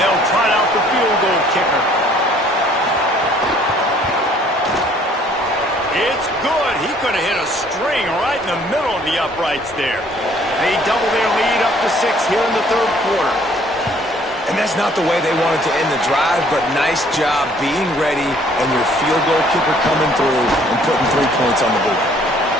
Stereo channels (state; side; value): normal; both; correlation 0.59